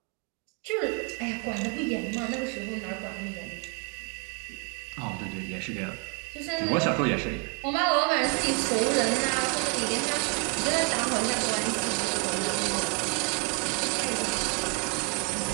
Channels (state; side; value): quieter; left; 34.4 dB